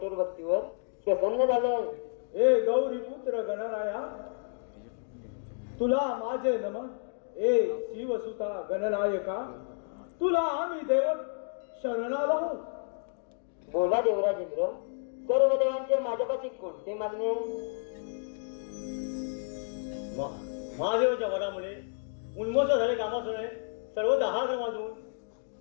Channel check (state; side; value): silent; right; digital silence